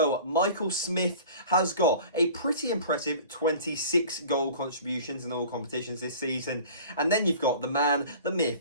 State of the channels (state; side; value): inverted; both; correlation -0.42